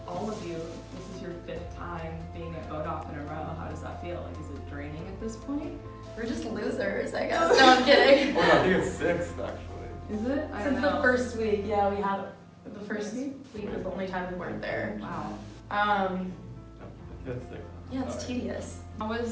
all of you, this is your fifth time being at vote off in a row. How does that feel? Like, is it draining at this point? We're just losers, I guess. No, I'm kidding. Oh, no, I think it's sixth actually. Is it? I don't Since know. the first week, yeah, we had the first week was the only time we weren't there. Wow. Fifth, sixth. Yeah, it's tedious. How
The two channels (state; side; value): identical; both; correlation 1.00